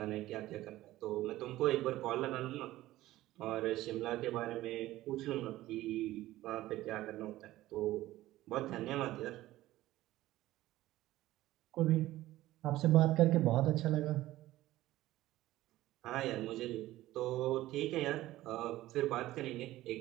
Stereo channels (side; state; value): left; quieter; 15.9 dB